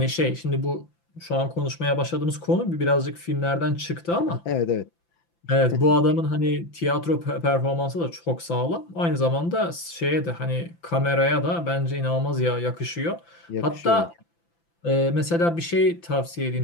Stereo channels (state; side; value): late; right; 5.9 ms